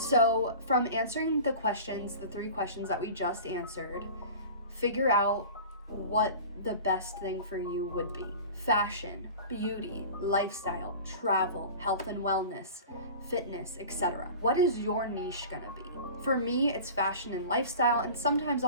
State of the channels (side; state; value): both; inverted; correlation -0.38